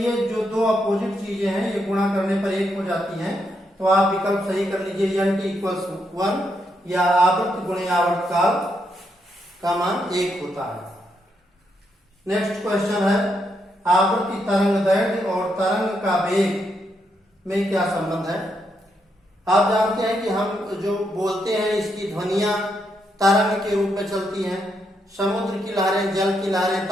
जो दो अपोजिट चीजें हैं ये गुणा करने पर 1 हो जाती हैं। तो आप विकल्प सही कर लीजिए, n t = 1 या आवृत्ति गुणे आवर्तकाल का मान 1 होता है। नेक्स्ट क्वेश्चन है, आवृत्ति तरंग दैर्घ्य और तरंग का वेग में क्या संबंध है। आप जानते हैं कि हम जो बोलते हैं इसकी ध्वनियां तरंग के रूप में चलती हैं। समुद्र की लहरें, जल की लहरें,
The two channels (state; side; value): normal; both; correlation 0.80